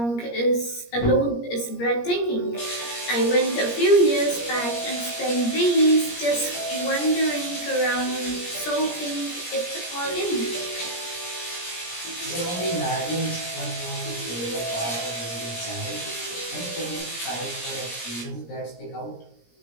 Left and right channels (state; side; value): late; right; 17 ms